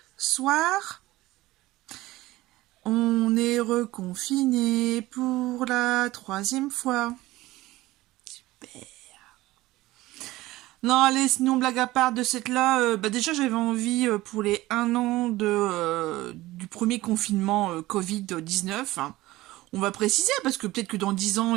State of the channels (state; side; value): quieter; left; 17.9 dB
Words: soir. On est reconfiné pour la 3e fois. Super. Non, allez, sinon, blague à part de cette là, déjà j'avais envie pour les 1 an du premier confinement Covid-19. Hein. On va préciser, parce que peut-être que dans 10 ans,